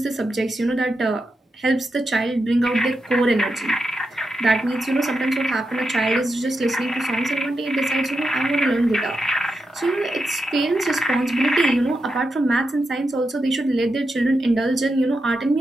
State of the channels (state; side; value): normal; both; correlation 0.87